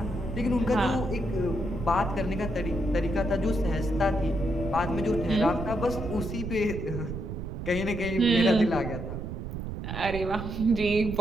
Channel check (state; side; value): noise; right; rumble, 6 dB below the sound